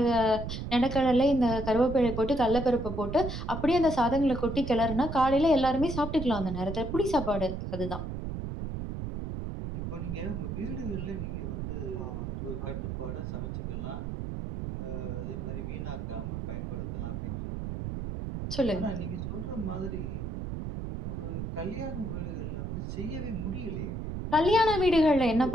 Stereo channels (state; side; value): noise; right; rumble, 5 dB below the sound